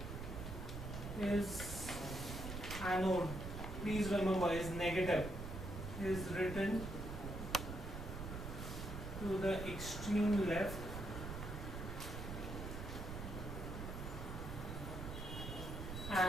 please remember, is negative, is written to the extreme left,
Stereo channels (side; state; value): right; noise; rumble, 6 dB below the sound